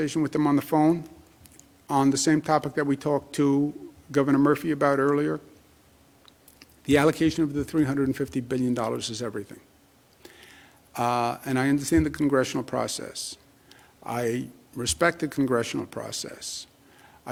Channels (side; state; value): both; identical; correlation 1.00